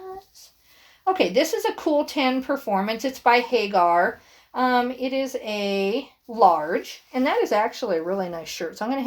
Okay, this is a Cool 10 Performance. It's by Hagar. It is a large, and that is actually a really nice shirt. So I'm going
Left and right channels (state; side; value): identical; both; correlation 1.00